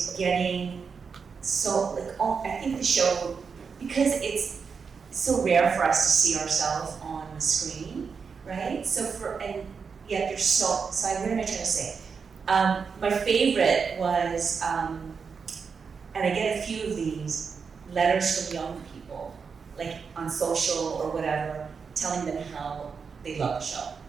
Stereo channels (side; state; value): left; quieter; 5.7 dB